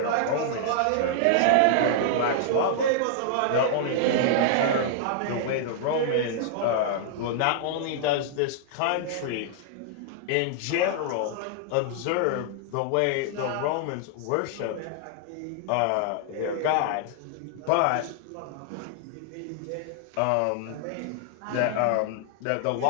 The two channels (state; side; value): different; both; correlation -0.01